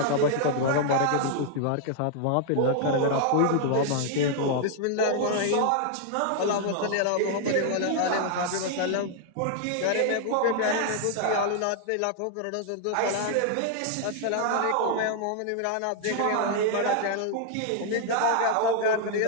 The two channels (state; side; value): different; both; correlation 0.00